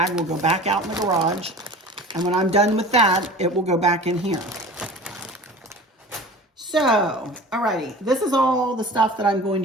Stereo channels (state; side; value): normal; both; correlation 0.39